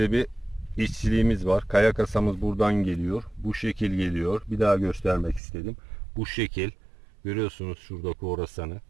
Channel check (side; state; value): left; drops out; at 5.4 s